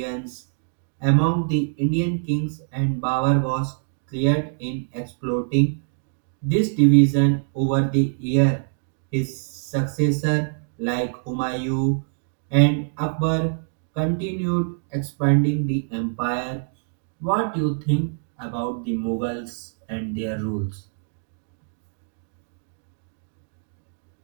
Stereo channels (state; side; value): silent; left; digital silence